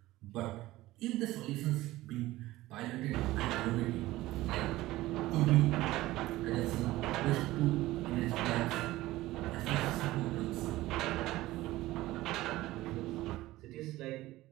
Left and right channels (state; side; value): quieter; left; 17.3 dB